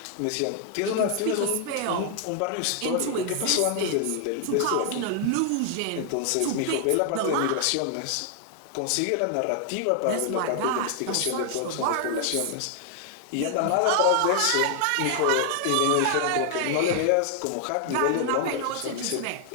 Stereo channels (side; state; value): both; different; correlation 0.00